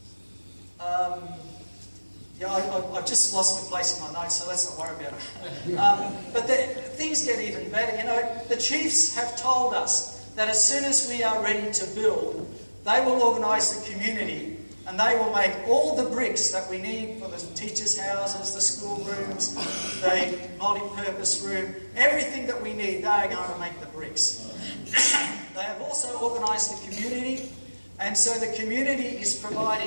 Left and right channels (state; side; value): inverted; both; correlation -1.00